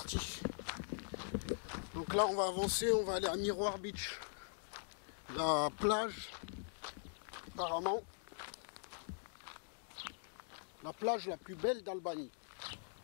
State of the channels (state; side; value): silent; right; digital silence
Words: Donc là on va avancer, on va aller à Miroir Beach. La plage, apparemment, la plage la plus belle d'Albanie.